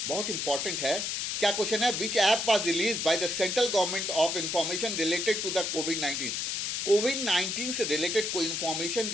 बहुत इंपॉर्टेंट है। क्या क्वेश्चन है, विच app was release by the central government of information related to the कोविड-19। कोविड-19 से रिलेटेड कोई इंफॉर्मेशन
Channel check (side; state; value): left; noise; hiss, 1 dB below the sound